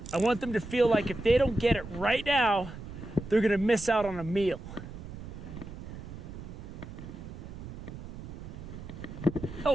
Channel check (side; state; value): right; noise; rumble, 11 dB below the sound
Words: I want them to feel like if they don't get it right now, they're gonna miss out on a meal.